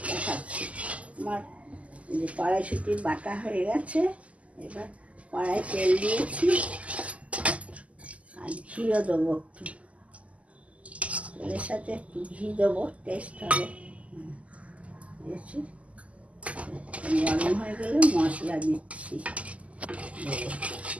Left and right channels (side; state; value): left; late; 0.067 ms